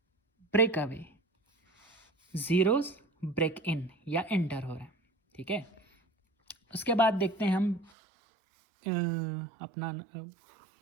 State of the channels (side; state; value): left; drops out; at 7.9 s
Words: break away, zeros break in या एंटर हो रहा है, ठीक है। उसके बाद देखते हैं हम अपना